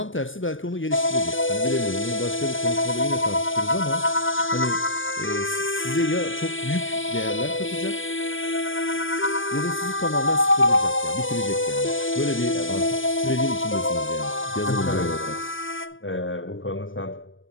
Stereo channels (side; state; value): right; late; 0.57 ms